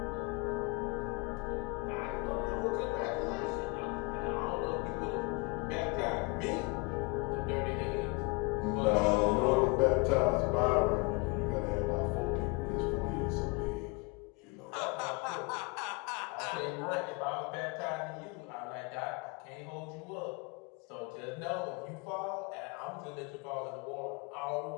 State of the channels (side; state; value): right; quieter; 29.1 dB